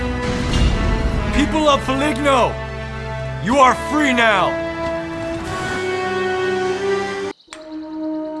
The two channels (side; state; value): both; identical; correlation 1.00